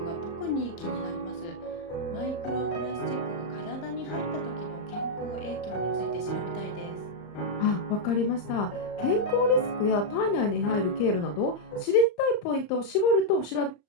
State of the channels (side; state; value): right; late; 34 ms